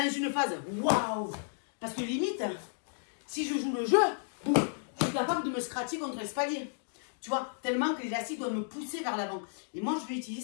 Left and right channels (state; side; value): silent; right; digital silence